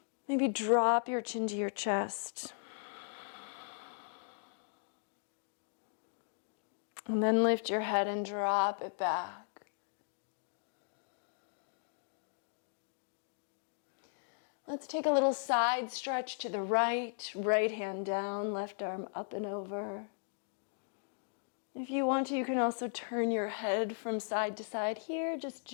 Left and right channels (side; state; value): right; silent; digital silence